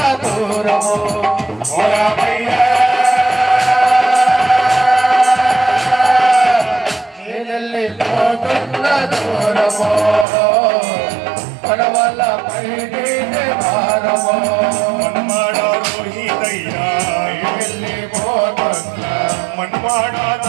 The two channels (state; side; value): drops out; left; at 10.2 s